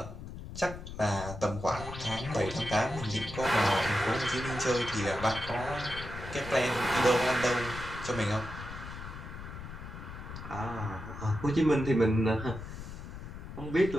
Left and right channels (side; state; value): left; noise; rumble, 10 dB below the sound